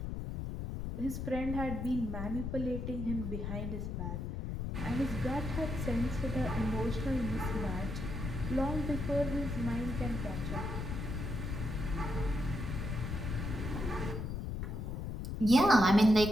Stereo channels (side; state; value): left; noise; rumble, 4 dB below the sound